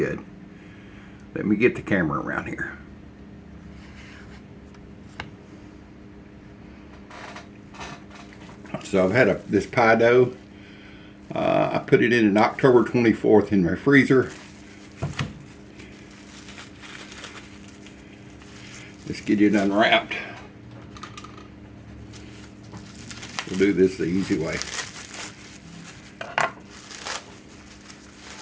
Let me get the camera around here. So I've had this pie dough. I put it in an October 24th in my freezer. Let's get it unwrapped. We'll do this the easy way.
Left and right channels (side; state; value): both; identical; correlation 1.00